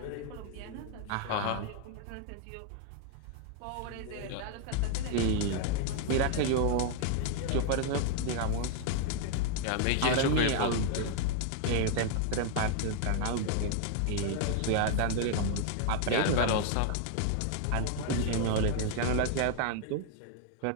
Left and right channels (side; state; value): both; different; correlation 0.00